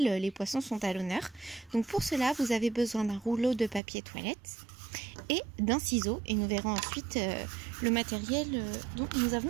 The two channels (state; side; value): drops out; left; at 3.8 s